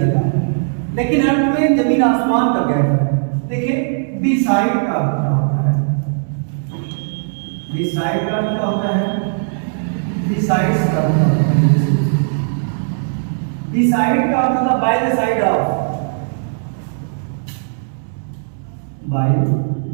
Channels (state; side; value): silent; left; digital silence